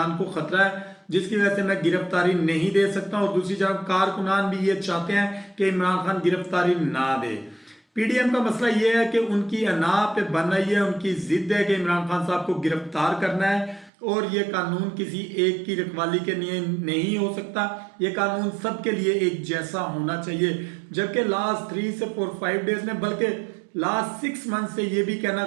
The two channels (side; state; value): left; drops out; at 13.9 s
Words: को खतरा है, जिसकी वजह से मैं गिरफ्तारी नहीं दे सकता। और दूसरी जानब कारकुनान भी ये चाहते हैं कि इमरान खान गिरफ्तारी ना दे। पीडीएम का मसला ये है कि उनकी अना पे बन रही है, उनकी जिद है कि इमरान खान साहब को गिरफ्तार करना है और ये कानून किसी एक की रखवाली के लिए नहीं हो सकता, ये कानून सबके लिए एक जैसा होना चाहिए। जबकि लास्ट 3 से 4-5 डेज में, बल्कि लास्ट 6 मंथ से ये भी कहना